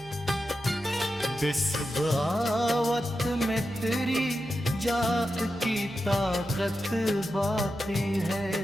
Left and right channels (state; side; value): noise; right; hum, 21 dB below the sound